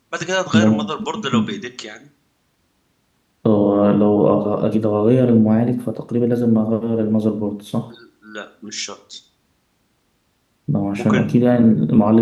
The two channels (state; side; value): identical; both; correlation 1.00